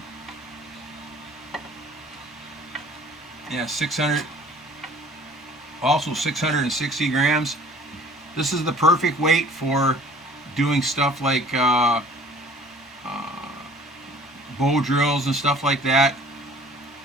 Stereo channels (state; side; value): normal; both; correlation 0.50